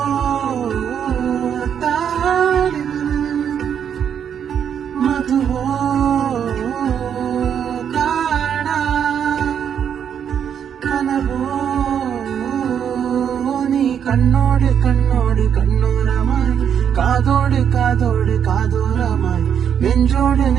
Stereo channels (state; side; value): quieter; left; 8.3 dB